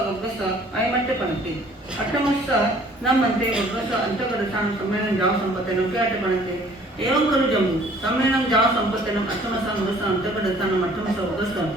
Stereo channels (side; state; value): both; normal; correlation 0.55